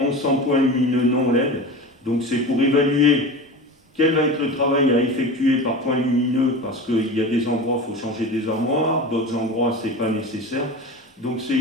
1100 points lumineux non LED. Donc c'est pour évaluer quel va être le travail à effectuer par point lumineux, parce qu'il y a des endroits, il faut changer des armoires, d'autres endroits, ce n'est pas nécessaire. Donc c'est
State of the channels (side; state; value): both; normal; correlation 0.31